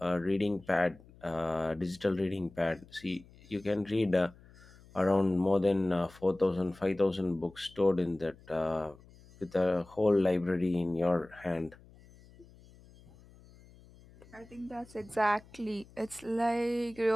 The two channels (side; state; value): left; noise; hum, 24 dB below the sound